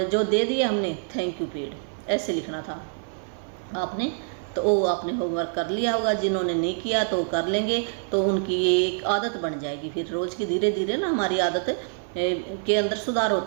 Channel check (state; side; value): silent; left; 56 dB below the other